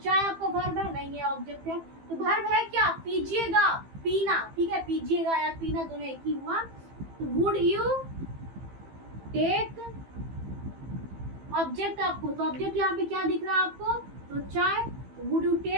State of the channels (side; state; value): left; late; 15 ms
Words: आपका वर्ब है? नहीं, ये ऑब्जेक्ट है। तो वर्ब है क्या? पीजिएगा, पीना, ठीक है, पीजिएगा या पीना दोनों एक ही हुआ। तो वुड यू टेक ऑब्जेक्ट आपको, तो ऑब्जेक्ट यहाँ पे क्या दिख रहा है आपको? तो चाय। वुड यू